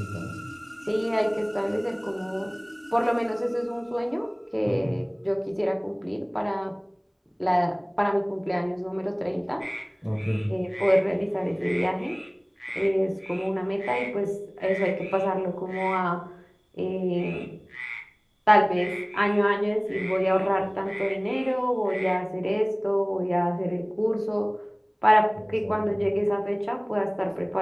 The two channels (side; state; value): both; identical; correlation 1.00